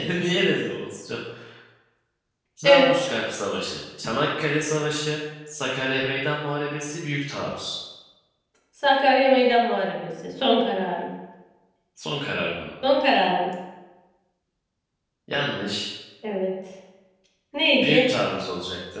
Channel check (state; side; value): identical; both; correlation 1.00